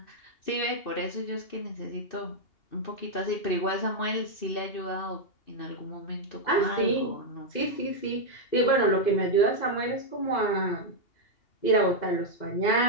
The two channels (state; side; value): late; right; 2.8 ms